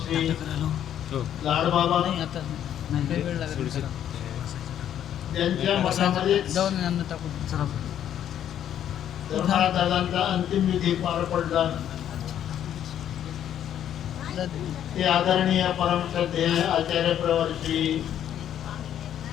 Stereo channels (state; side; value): quieter; right; 10.3 dB